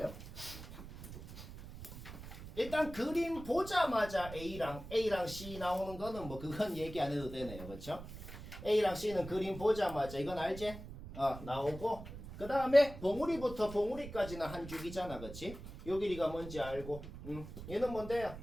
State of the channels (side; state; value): right; noise; rumble, 12 dB below the sound